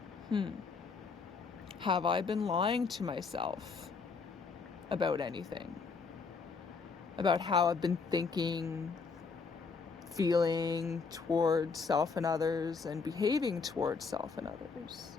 have I been lying to myself about anything? About how I've been thinking, feeling towards self and others, and behaving towards self and others?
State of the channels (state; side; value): quieter; right; 5.0 dB